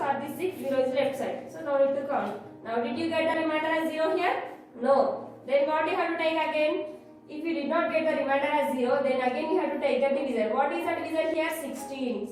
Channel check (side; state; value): both; identical; correlation 1.00